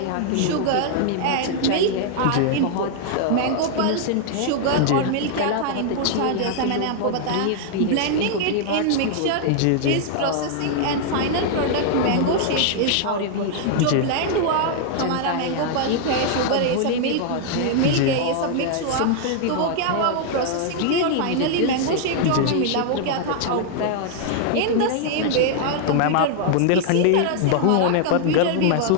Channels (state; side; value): different; both; correlation -0.01